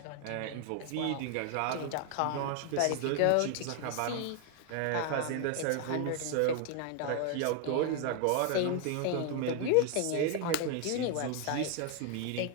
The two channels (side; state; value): both; different; correlation 0.00